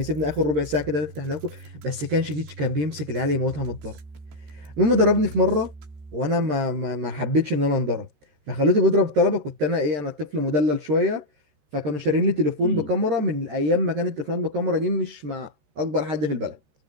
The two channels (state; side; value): late; left; 13 ms